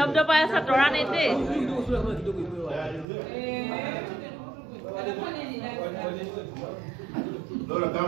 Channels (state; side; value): drops out; left; at 3.1 s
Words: আছে তৰাণীত দেই